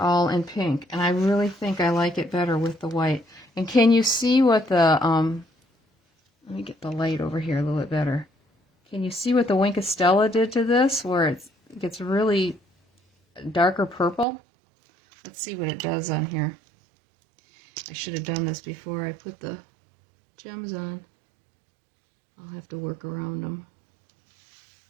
in pink. And I really think I like it better with the white. And can you see what the, let me get the light over here a little bit better. Can you see what the Wink of Stella did to this, where it gets really darker purple? Let's see what it does on here. I should have done this before I put the gems on. I'll have to work around them.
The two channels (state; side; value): drops out; left; at 14.2 s